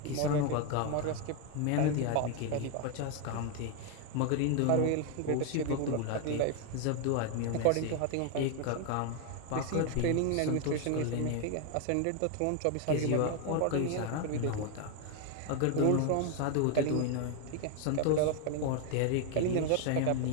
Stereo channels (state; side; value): different; both; correlation 0.01